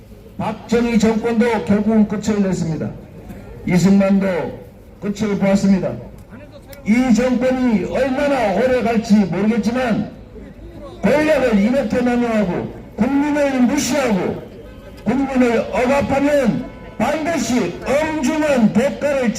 박정희 정권도 결국은 끝을 냈습니다. 이승만도 끝을 보았습니다. 이 정권이 얼마나 오래 갈지 모르겠지만 권력을 이렇게 남용하고 국민을 무시하고 국민을 억압하면 반드시 엄중한 대가를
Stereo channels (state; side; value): identical; both; correlation 1.00